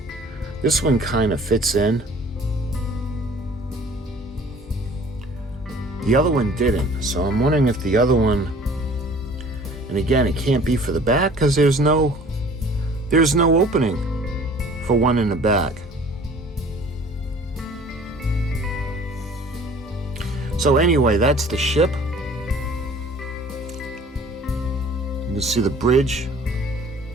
This one kind of fits in. The other one didn't, so I'm wondering if the other one, and again, it can't be for the back because there's no opening for one in the back. So anyway, that's the ship. You can see the bridge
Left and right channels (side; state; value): both; normal; correlation 0.50